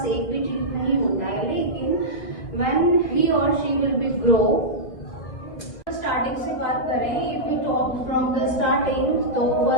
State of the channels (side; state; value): right; late; 1.8 ms